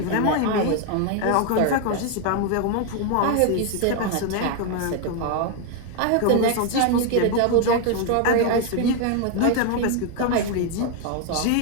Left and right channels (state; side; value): different; both; correlation 0.01